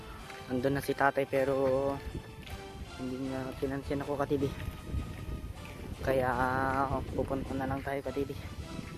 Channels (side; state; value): both; identical; correlation 1.00